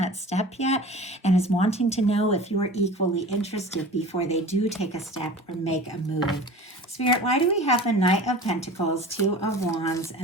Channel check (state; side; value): normal; both; correlation 0.39